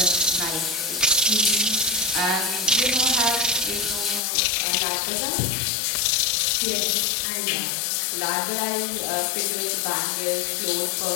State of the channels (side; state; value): right; drops out; at 4.2 s